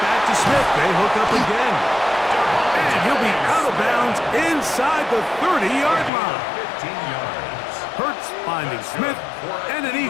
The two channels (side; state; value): right; drops out; at 6.1 s